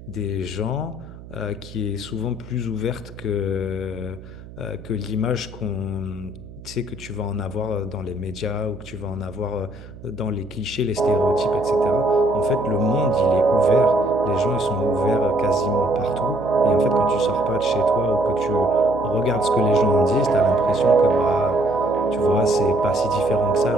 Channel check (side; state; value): right; noise; hum, 17 dB below the sound